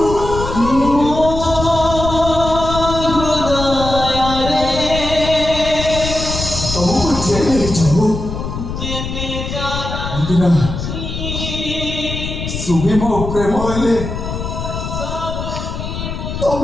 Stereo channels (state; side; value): noise; left; rumble, 6 dB below the sound